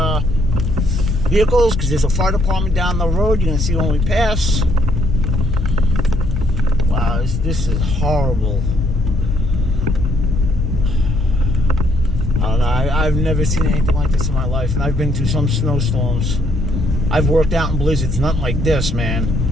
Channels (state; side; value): normal; both; correlation 0.69